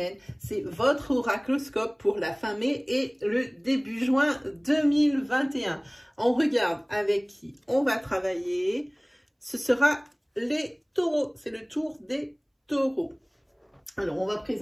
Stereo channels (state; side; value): identical; both; correlation 1.00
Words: C'est votre oracloscope pour la fin mai et le début juin 2021. On regarde avec qui on va travailler. Ce sera les taureaux, c'est le tour des taureaux. Alors, on va